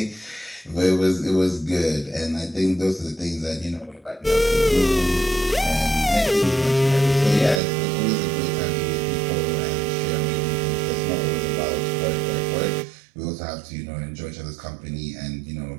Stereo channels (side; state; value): left; drops out; at 7.6 s